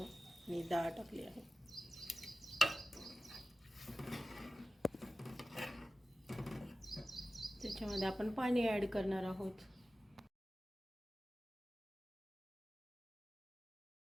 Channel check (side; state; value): both; normal; correlation 0.95